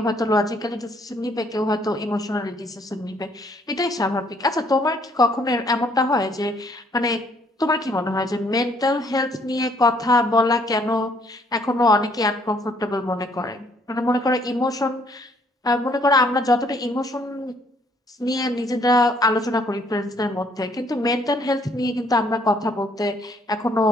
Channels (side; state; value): both; normal; correlation 0.65